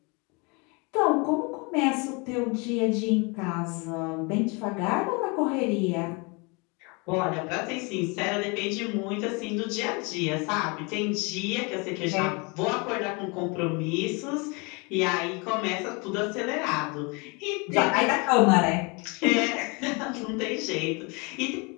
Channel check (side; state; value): right; quieter; 29.9 dB